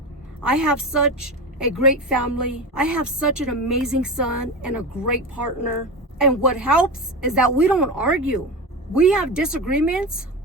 I have such a great family. I have such an amazing son and a great partner. And what helps is that we don't argue. We have disagreements,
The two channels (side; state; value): both; normal; correlation 0.23